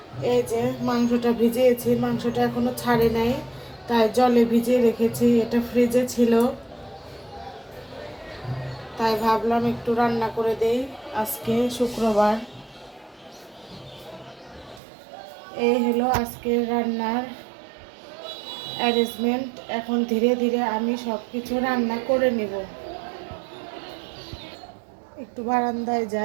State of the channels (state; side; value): drops out; left; at 14.8 s